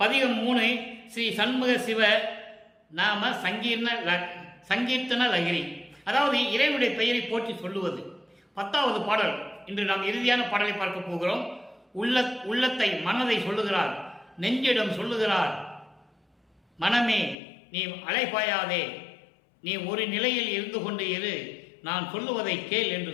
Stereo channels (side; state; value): right; drops out; at 17.4 s